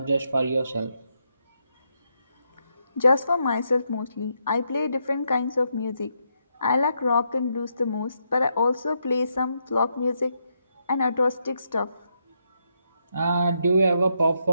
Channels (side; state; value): both; inverted; correlation -0.80